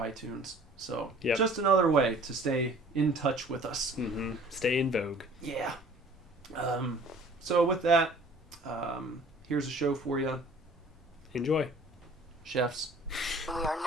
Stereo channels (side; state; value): both; normal; correlation 0.50